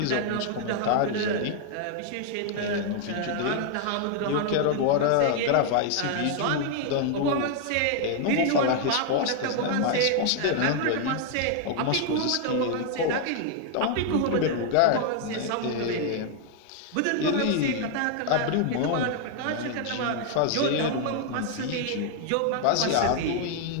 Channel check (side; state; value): both; different; correlation 0.00